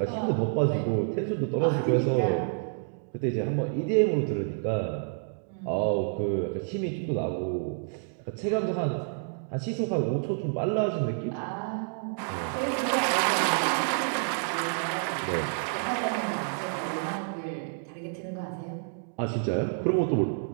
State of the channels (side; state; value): left; silent; digital silence